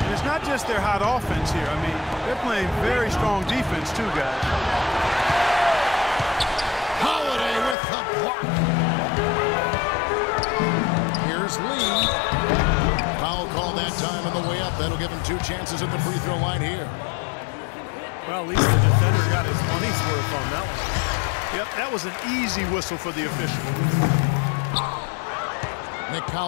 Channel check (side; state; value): right; drops out; at 7.8 s